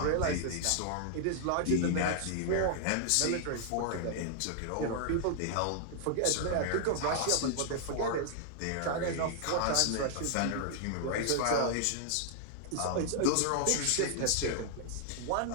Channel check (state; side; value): different; both; correlation -0.01